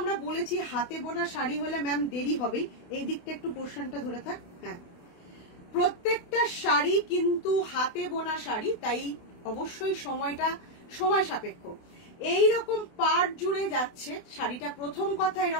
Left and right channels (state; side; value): late; right; 28 ms